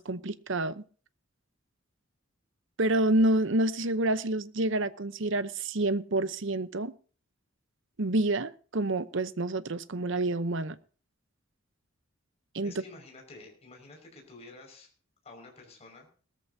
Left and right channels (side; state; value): both; normal; correlation 0.20